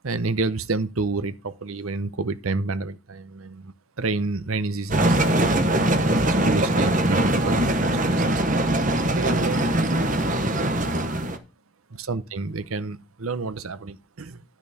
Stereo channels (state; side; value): normal; both; correlation 0.48